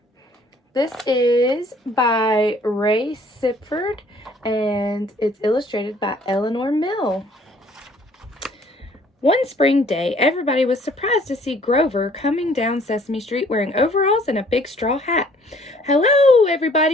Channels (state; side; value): normal; both; correlation 0.58